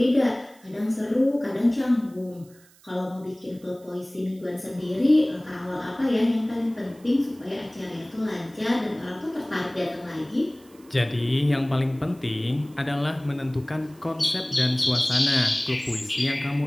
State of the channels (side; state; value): right; noise; hiss, 28 dB below the sound